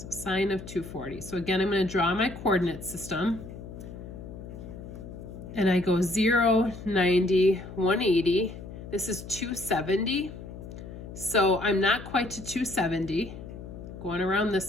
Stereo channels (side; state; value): left; noise; hum, 12 dB below the sound